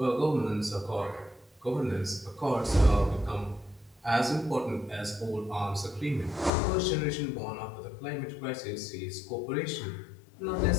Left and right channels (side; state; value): right; drops out; at 6.5 s